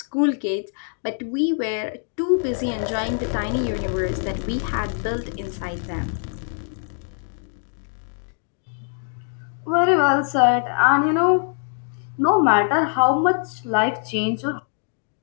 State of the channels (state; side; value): silent; right; 56 dB below the other